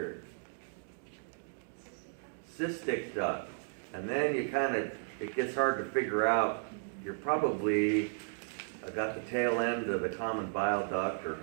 Cystic duct. And then you it gets hard to figure out. You're probably got the tail end of the common bile duct, or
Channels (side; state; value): left; silent; 55 dB below the other